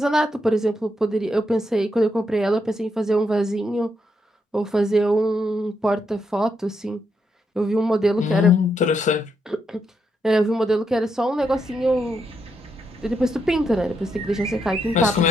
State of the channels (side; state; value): both; normal; correlation 0.80